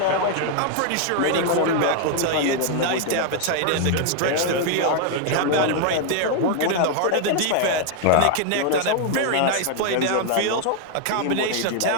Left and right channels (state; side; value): different; both; correlation 0.00